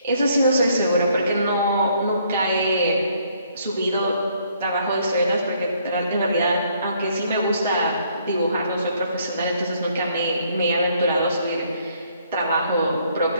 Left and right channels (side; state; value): both; inverted; correlation -0.66